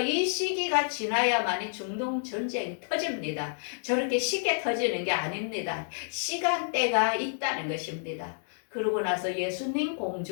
시기가 지나야만이 중동 전쟁이 터집니다. 저렇게 쉽게 터지는 게 아닙니다. 시간대가 있다는 것입니다. 그러고 나서 예수님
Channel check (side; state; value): right; silent; digital silence